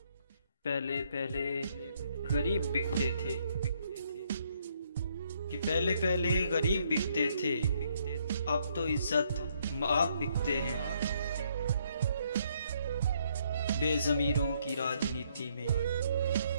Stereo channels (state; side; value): inverted; both; correlation -0.70